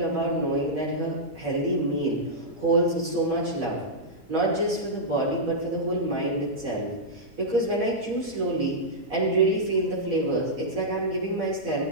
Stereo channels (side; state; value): both; normal; correlation -0.09